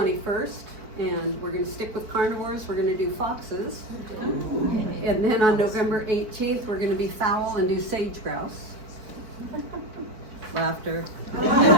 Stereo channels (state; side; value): late; left; 4.6 ms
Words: And we're going to stick with carnivores. We're going to do foxes. And then on November 18th, we're going to be fowl and do sage grouse. Laughter.